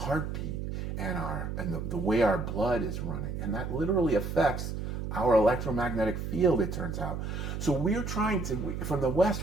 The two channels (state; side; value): noise; right; hum, 4 dB below the sound